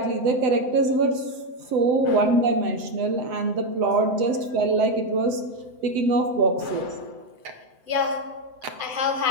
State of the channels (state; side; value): late; left; 7.9 ms